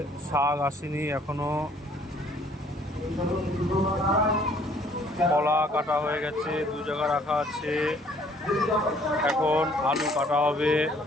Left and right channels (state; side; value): normal; both; correlation 0.60